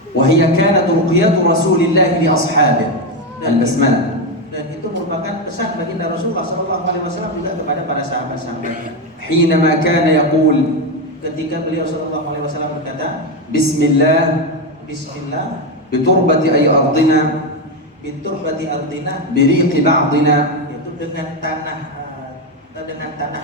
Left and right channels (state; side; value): normal; both; correlation 0.10